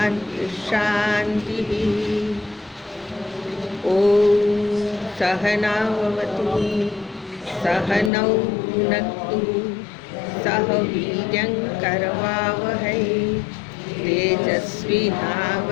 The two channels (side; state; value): right; drops out; at 8.1 s